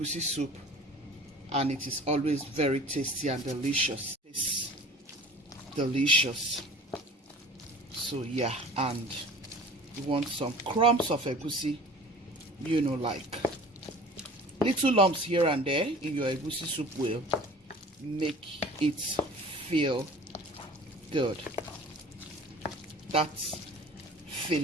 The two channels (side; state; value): both; normal; correlation 0.44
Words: soup, and it is always very tasty and delicious. It's delicious. So yeah, and you want some crumbs of egusi, you know, like little lumps here and there in your egusi soup will make it feel good. That